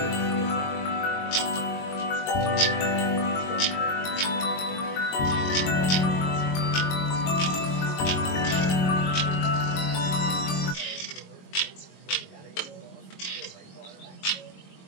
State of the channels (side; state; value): right; late; 22 ms